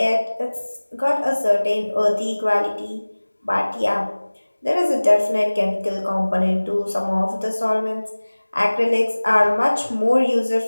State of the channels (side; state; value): both; inverted; correlation -1.00